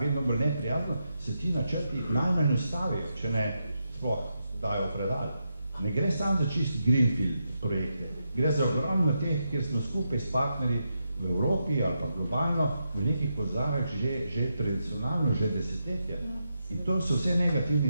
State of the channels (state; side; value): inverted; both; correlation -0.85